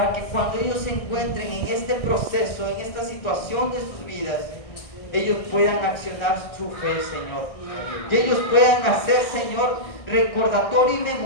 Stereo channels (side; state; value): right; late; 1.6 ms